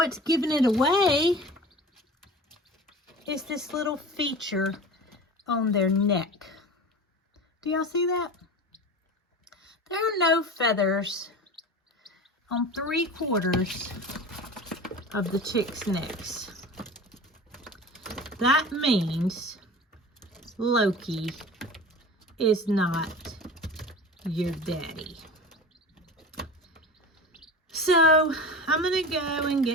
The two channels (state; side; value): normal; both; correlation 0.35